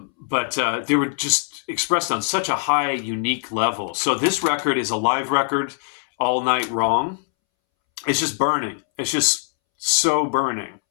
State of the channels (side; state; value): right; silent; 64 dB below the other